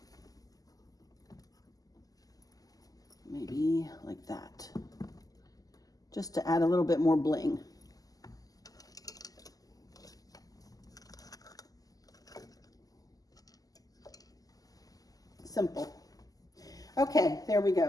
Maybe like that. Just to add a little bit more bling. Simple. Okay, there we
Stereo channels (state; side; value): late; right; 0.17 ms